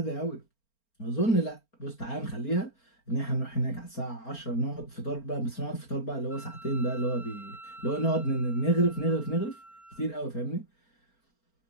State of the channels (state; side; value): late; right; 4.4 ms